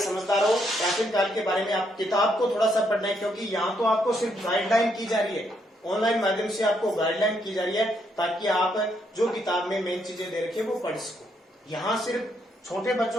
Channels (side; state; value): both; normal; correlation 0.75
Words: हो, प्राचीन काल के बारे में आप किताब को थोड़ा सा पढ़ना है, क्योंकि यहाँ तो आपको सिर्फ गाइडलाइन की जा रही है, ऑनलाइन माध्यम से आपको गाइडलाइन की जा रही है, ताकि आप जो किताब में मेन चीजें दे रखी है वो पढ़ सको। यहाँ सिर्फ छोटे